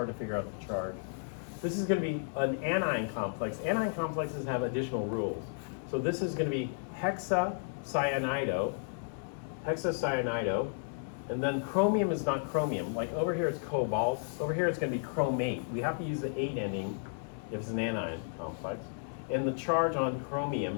to figure out the charge. This is going to be an anion complex. Anion complexes have additional rules. So this is going to be hexacyanido, and then chromium is not chromium. Like over here it's cobalt, over here it's going to be chromate. We have to use the 8 ending if it's an anion complex. And the charge on chromium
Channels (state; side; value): silent; right; digital silence